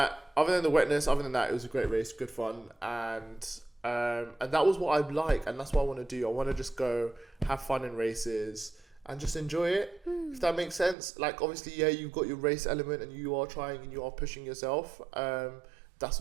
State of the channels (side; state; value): left; drops out; at 11.0 s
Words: wetness, other than that, it was a great race, good fun, and that was what I like, and that's what I want to do. I want to just go have fun in races and just enjoy it, if that makes sense. Like, obviously, yeah, you've got your race element and you are trying and you are pushing yourself. That's